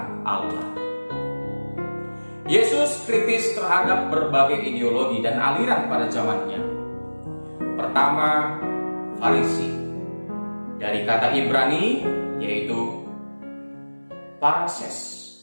Allah. Yesus kritis terhadap berbagai ideologi dan aliran pada zamannya. Pertama, Farisi. Dari kata Ibrani yaitu Parases,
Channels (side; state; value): both; inverted; correlation -1.00